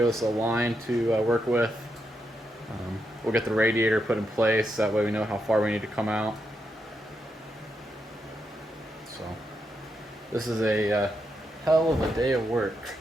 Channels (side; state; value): both; normal; correlation 0.83